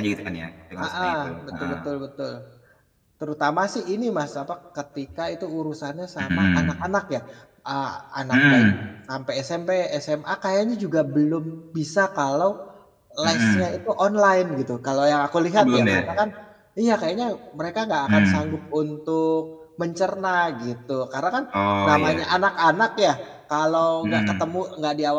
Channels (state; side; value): identical; both; correlation 1.00